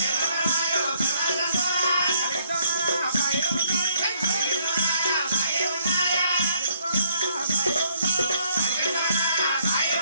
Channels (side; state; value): both; inverted; correlation -0.68